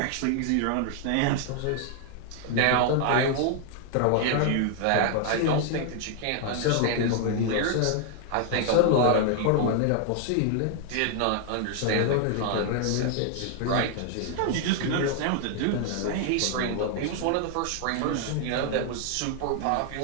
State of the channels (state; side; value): different; both; correlation 0.00